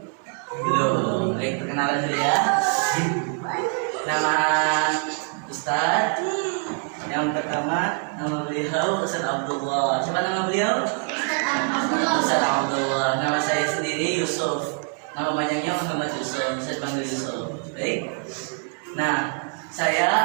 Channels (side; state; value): left; quieter; 39.4 dB